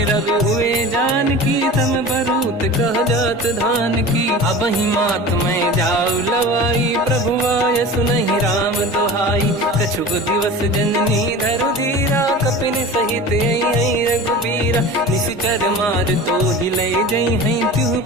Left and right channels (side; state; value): both; normal; correlation 0.35